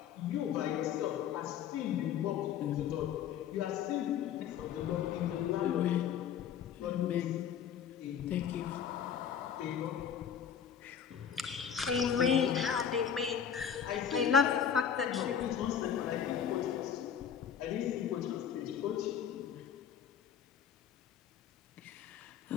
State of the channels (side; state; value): right; quieter; 8.3 dB